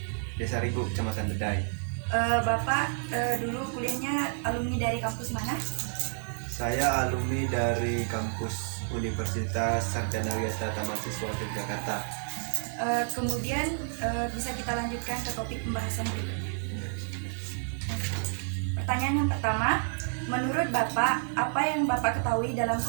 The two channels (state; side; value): silent; left; 58 dB below the other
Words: Desa Rigu, Kecamatan Bedai. Bapak dulu kuliahnya alumni dari kampus mana? Saya alumni dari kampus Universitas Sarjana Wisata Mahasiswa Yogyakarta. Kemudian bisa kita lanjutkan ke topik pembahasan berikutnya. Pertanyaan yang pertama, menurut Bapak, apa yang Bapak ketahui dalam